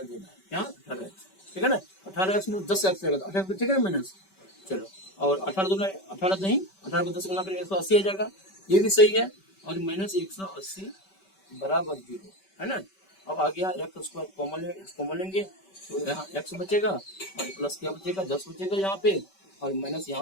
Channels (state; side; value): late; right; 5.2 ms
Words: क्या 18x, ठीक है ना। 18x में 10x रहेगा, 18 ठीक है माइनस। चलो और 18 दूना 18 नहीं, 18 को 10 गुना करेंगे 180 आ जाएगा, ये भी सही है। और माइनस 180 बराबर 0, है ना। अब आ गया एक्स स्क्वायर कॉमन लेंगे, तो यहाँ x बचेगा और प्लस क्या बचेगा 10 बचेगा यहाँ पे, और माइनस